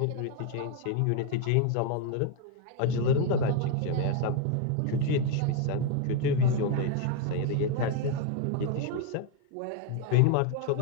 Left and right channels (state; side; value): different; both; correlation 0.01